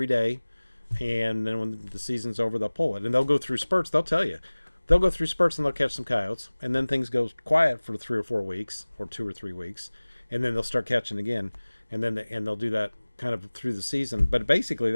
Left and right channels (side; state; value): both; inverted; correlation -1.00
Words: day. And then when the season's over, they'll pull it. And they'll go through spurts. They'll tell you. They'll go through spurts and they'll catch some coyotes. And then things go quiet for 3 or 4 weeks, or 2 or 3 weeks. And then they'll start catching again. And then they'll do that kind of through the season. But basically,